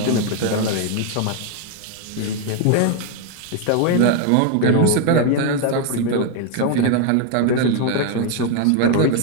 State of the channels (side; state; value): both; different; correlation 0.01